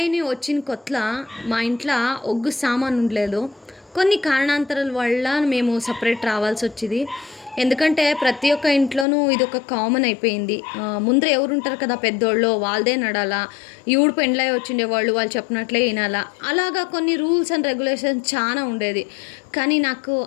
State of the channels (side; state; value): right; drops out; at 9.1 s